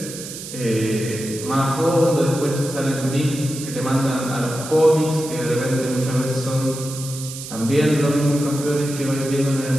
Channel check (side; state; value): right; noise; hiss, 11 dB below the sound